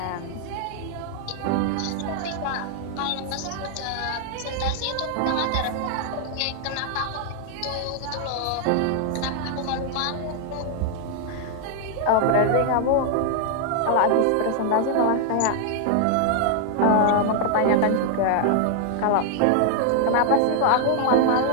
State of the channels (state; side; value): different; both; correlation 0.00